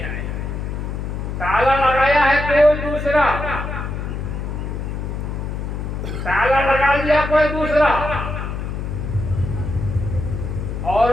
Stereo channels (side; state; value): left; noise; hum, 4 dB below the sound